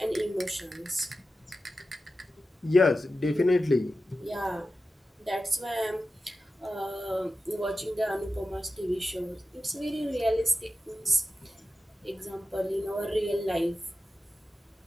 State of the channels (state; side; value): normal; both; correlation 0.92